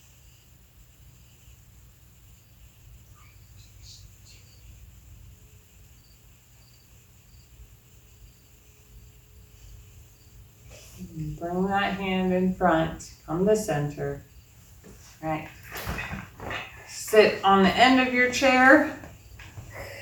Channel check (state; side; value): identical; both; correlation 1.00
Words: Bring that hand in front, come to center. All right. Sit on the end of your chair,